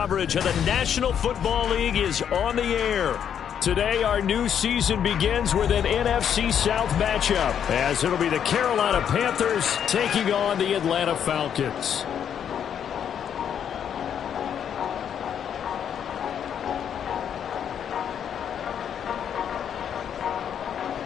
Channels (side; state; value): right; quieter; 8.7 dB